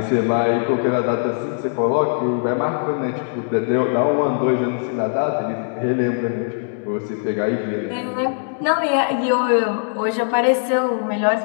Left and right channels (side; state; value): right; silent; 65 dB below the other